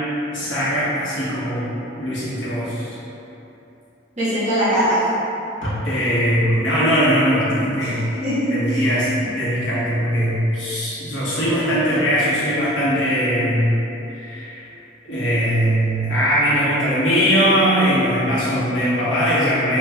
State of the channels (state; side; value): normal; both; correlation 0.40